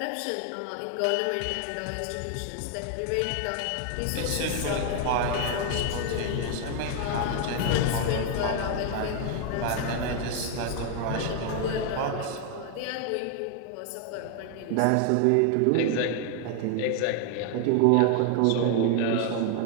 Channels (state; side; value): different; both; correlation 0.00